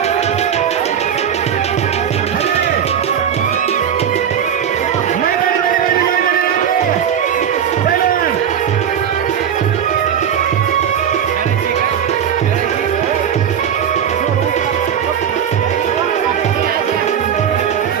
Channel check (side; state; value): left; quieter; 8.6 dB